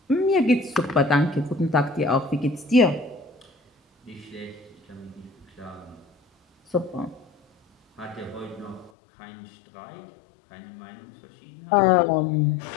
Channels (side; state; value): right; drops out; at 8.9 s